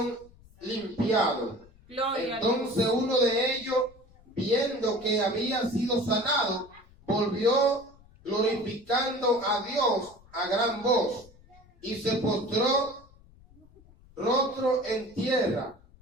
limpiados. Gloria a Entonces uno de ellos, viendo que había sido sanado, volvió glorificando a Dios a gran voz, y se postró rostro en tierra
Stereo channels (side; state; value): left; noise; rumble, 26 dB below the sound